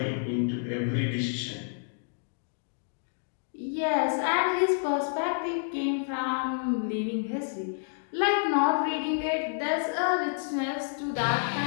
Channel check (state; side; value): silent; right; digital silence